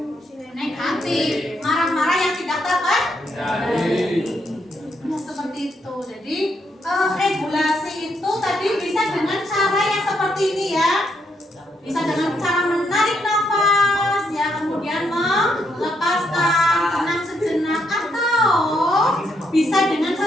negatif, marah-marah yang tidak terkendali. Nah, seperti itu. Jadi regulasi itu tadi bisa dengan cara yang seperti ini ya. Bisa dengan cara menarik nafas ya, kemudian melepaskan, tenang sejenak, atau bisa dengan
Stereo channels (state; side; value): normal; both; correlation 0.77